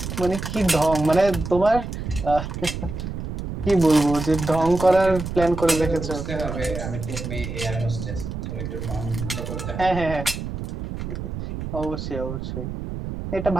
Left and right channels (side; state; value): right; noise; rumble, 6 dB below the sound